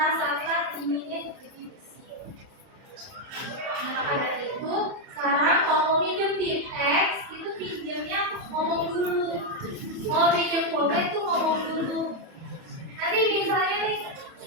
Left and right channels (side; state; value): left; late; 30 ms